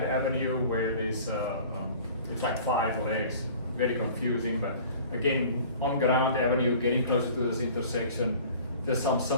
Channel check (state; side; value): inverted; both; correlation -0.46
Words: Avenue where there's it's like 5 legs, very confusing, but again, on Grand Avenue, getting closer to this intersection, just some